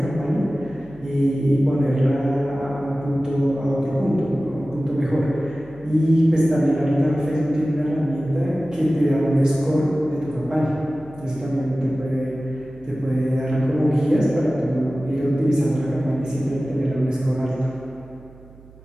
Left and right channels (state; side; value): noise; right; hum, 23 dB below the sound